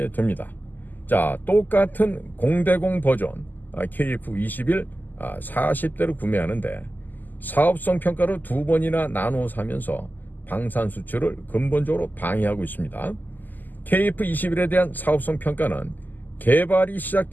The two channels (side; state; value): right; late; 0.086 ms